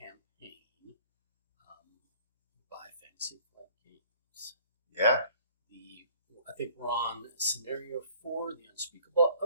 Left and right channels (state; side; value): inverted; both; correlation -0.53